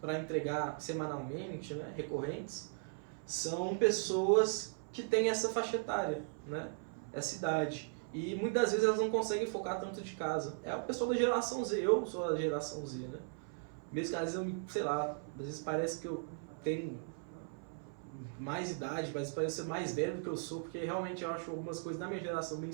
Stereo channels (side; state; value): left; silent; 53 dB below the other